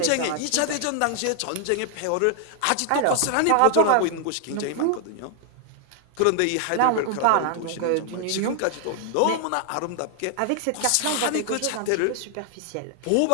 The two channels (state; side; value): different; both; correlation 0.00